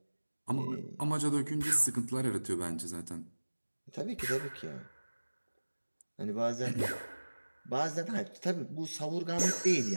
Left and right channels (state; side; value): inverted; both; correlation -1.00